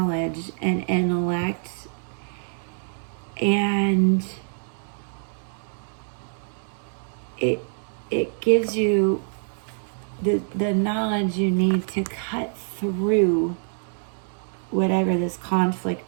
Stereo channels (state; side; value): silent; left; 61 dB below the other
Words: and intellect, and it gives you the knowledge you need to cut through whatever this